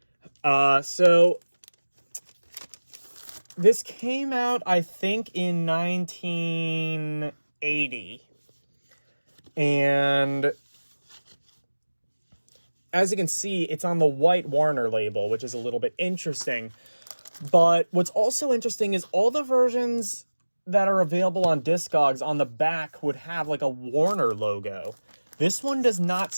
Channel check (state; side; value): inverted; both; correlation -1.00